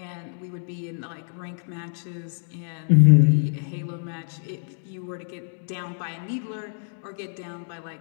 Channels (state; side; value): silent; right; digital silence